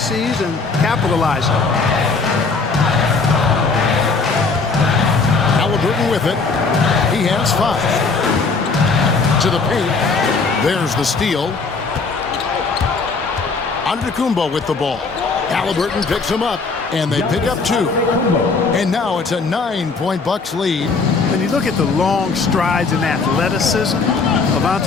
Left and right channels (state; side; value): quieter; right; 4.4 dB